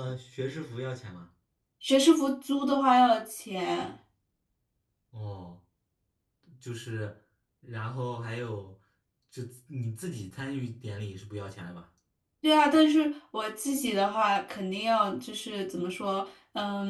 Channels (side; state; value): both; identical; correlation 1.00